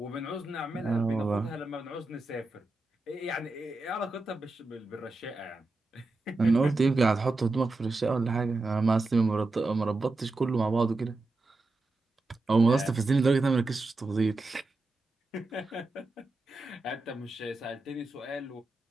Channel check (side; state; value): left; quieter; 3.1 dB